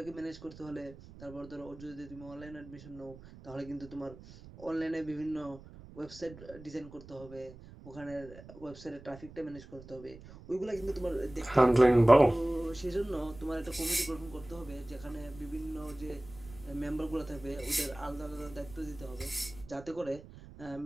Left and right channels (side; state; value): right; noise; rumble, 18 dB below the sound